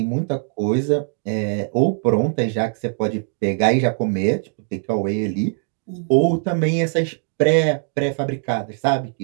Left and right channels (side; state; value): left; silent; digital silence